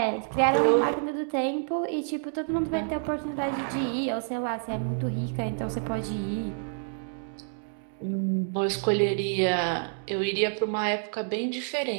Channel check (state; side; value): silent; left; digital silence